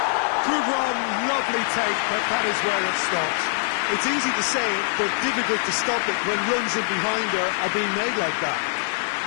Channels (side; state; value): right; silent; digital silence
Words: Good run, lovely take, but that is where it stops. It's easy to say it, but difficult to stop it when runs in behind are being made like that.